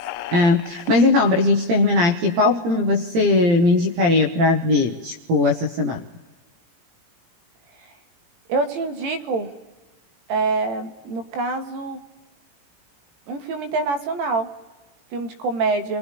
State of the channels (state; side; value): late; left; 18 ms